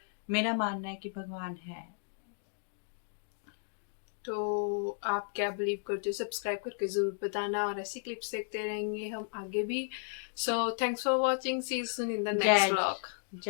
मेरा मानना है कि भगवान है। तो आप क्या बिलीव करते हो, सब्सक्राइब करके ज़रूर बताना और ऐसी क्लिप्स देखते रहेंगे हम आगे भी। So thanks for watching, see you soon in the next vlog.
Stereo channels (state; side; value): silent; right; digital silence